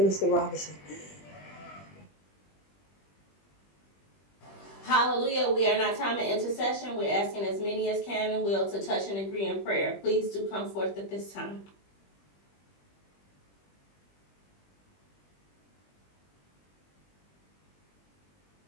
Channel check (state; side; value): late; right; 20 ms